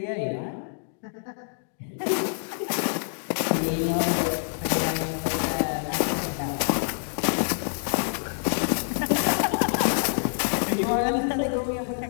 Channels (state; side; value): silent; right; digital silence